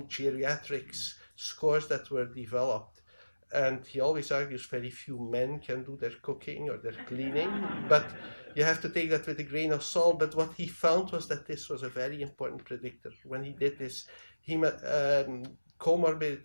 Geriatric's scores that were developed. And he always argues very few men can do their cooking or their cleaning, but you have to take that with a grain of salt. But what he found was that this was a very important predictor. When he did this, he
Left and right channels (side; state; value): both; inverted; correlation -1.00